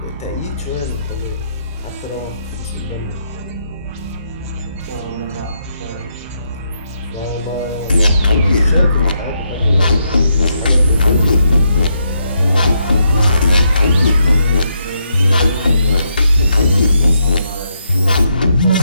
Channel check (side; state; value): both; inverted; correlation -0.79